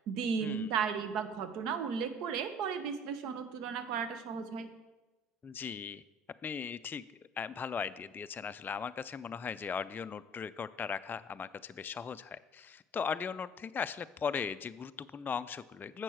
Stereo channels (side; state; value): both; normal; correlation 0.48